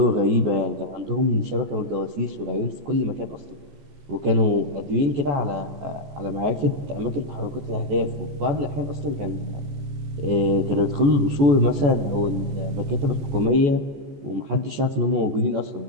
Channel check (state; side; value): late; left; 14 ms